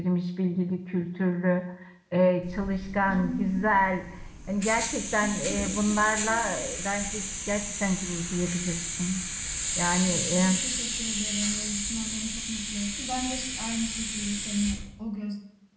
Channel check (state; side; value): identical; both; correlation 1.00